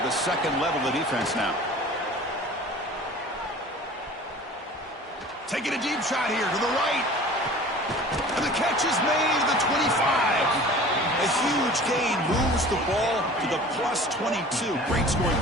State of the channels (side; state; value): both; normal; correlation 0.43